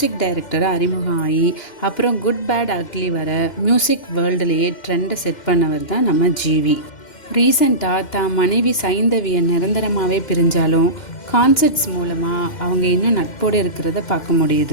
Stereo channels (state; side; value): late; right; 2.1 ms